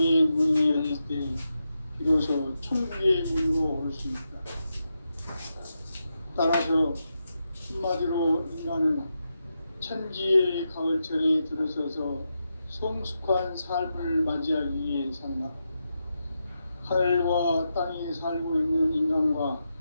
문이 열릴 때 비로소 천국의 문으로 올 수 있다. 따라서 한마디로 인간은 천지의 가을철에 들어서서 성숙한 삶을 맞이하기 위해 산다. 하늘과 땅에 살고 있는 인간과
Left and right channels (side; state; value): both; inverted; correlation -0.86